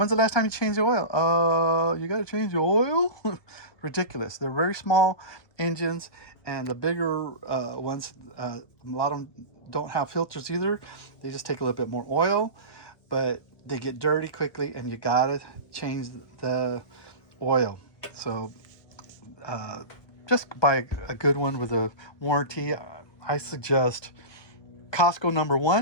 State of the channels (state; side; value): late; right; 1.2 ms